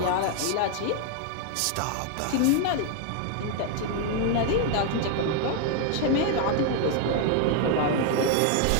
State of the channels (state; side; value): different; both; correlation 0.00